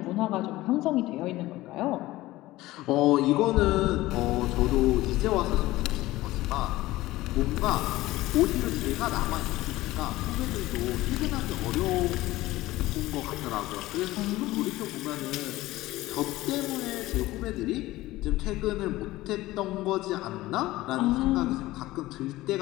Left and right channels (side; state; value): right; quieter; 17.6 dB